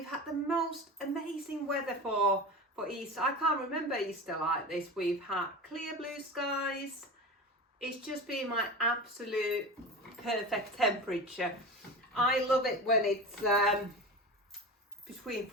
had the most amazing weather for Easter. I can't remember Easter like this. We've had clear blue skies. It's just been my absolute perfect temperature. I love it when it's between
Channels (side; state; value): both; normal; correlation 0.29